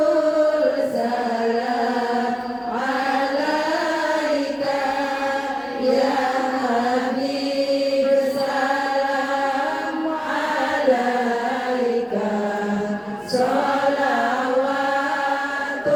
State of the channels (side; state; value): both; identical; correlation 1.00